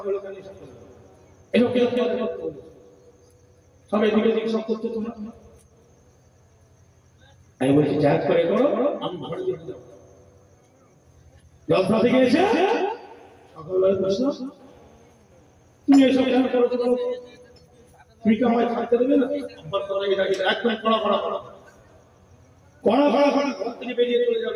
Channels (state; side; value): identical; both; correlation 1.00